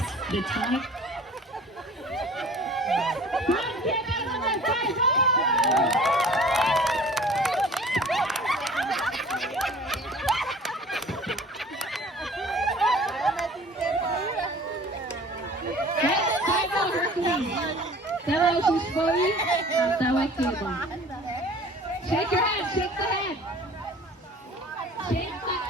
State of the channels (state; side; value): normal; both; correlation 0.46